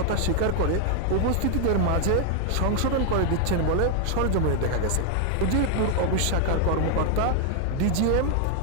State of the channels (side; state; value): both; different; correlation 0.00